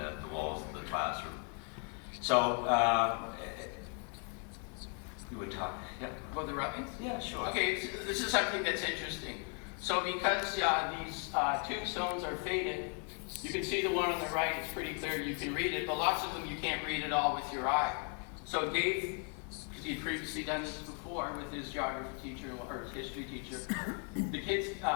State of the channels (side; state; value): right; quieter; 39.2 dB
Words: walls of the classroom. So, you would talk, yeah? About the rubbings? Yeah, sure. Okay, this is something that's interesting. So because these tombstones are faded, you can see the one on the right, it's pretty clear, you can read it, but lots of them you can't read at all with your eye. So Dave, because he'd previously done this before with his geography teacher or his history teacher, the kids